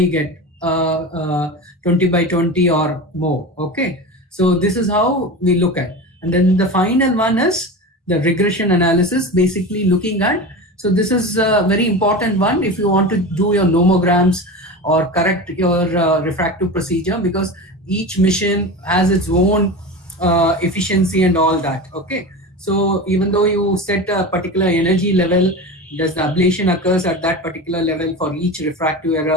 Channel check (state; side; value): normal; both; correlation 0.27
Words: get 20 by 20 or more. Okay. So this is how we look at. And then the final one is the regression analysis, basically looking at, so this is a very important one if you want to do your nomograms or correct your refractive procedure, because each mission has its own efficiency and all that. Okay. So even though you set a particular energy level, does the ablation occurs at that particular level for each refractive